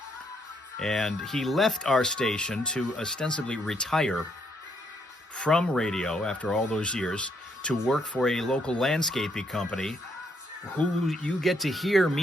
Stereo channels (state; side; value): normal; both; correlation 0.73